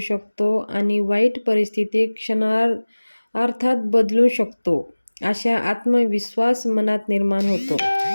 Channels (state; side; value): inverted; both; correlation -1.00